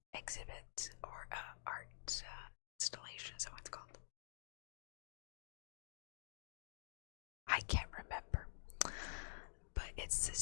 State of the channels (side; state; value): right; silent; digital silence